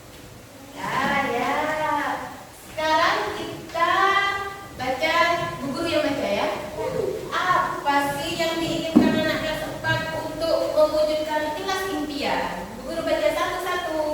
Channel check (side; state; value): both; identical; correlation 1.00